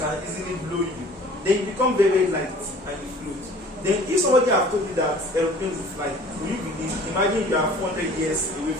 easily blow you. Then you become very, very light and you float. Then if somebody have told you that aeroplanes will fly, will you believe? Imagine you are 400 years away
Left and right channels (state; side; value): normal; both; correlation 0.49